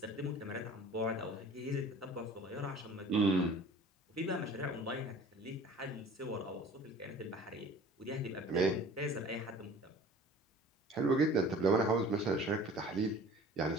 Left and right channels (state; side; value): normal; both; correlation 0.45